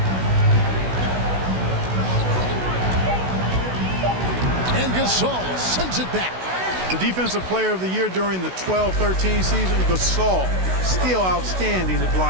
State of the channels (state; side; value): late; left; 16 ms